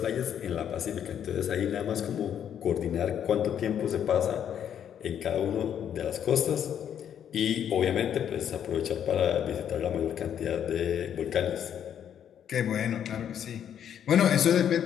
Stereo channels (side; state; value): right; quieter; 9.2 dB